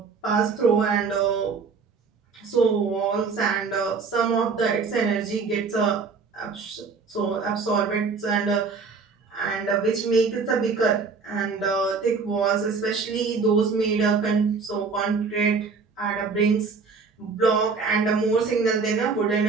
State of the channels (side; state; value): left; quieter; 4.9 dB